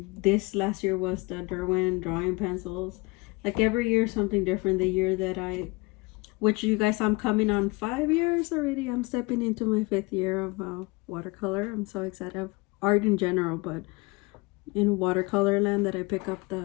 this last year was the Derwent drawing pencils. Like every year something different. The year that which you guys, I'm coming on 5 years already. I'm stepping into my 5th year of watercolor. I'm so excited of art in general, but in watercolor land that I pick up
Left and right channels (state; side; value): quieter; right; 25.2 dB